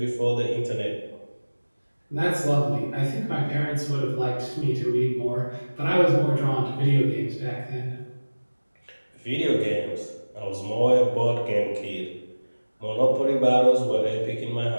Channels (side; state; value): both; inverted; correlation -1.00